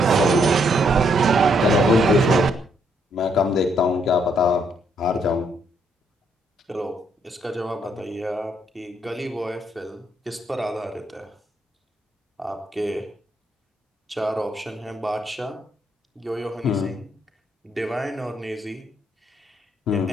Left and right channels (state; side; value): normal; both; correlation 0.73